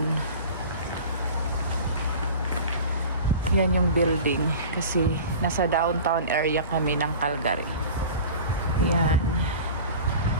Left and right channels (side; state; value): both; inverted; correlation -0.38